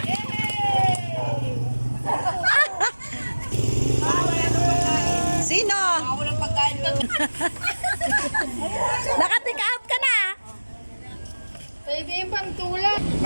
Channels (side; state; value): both; inverted; correlation -1.00